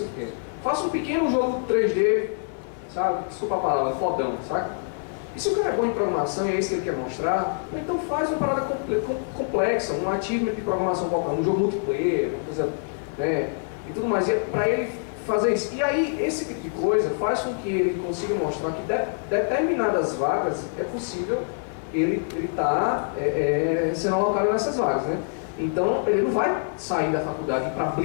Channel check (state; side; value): silent; right; digital silence